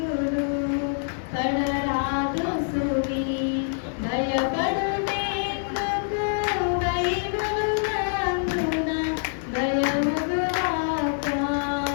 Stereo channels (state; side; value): silent; right; digital silence